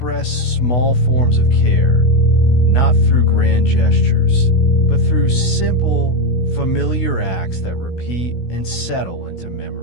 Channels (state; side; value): late; right; 16 ms